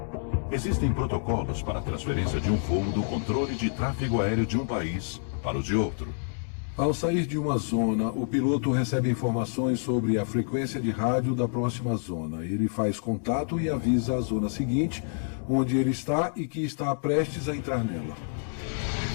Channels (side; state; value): right; silent; 59 dB below the other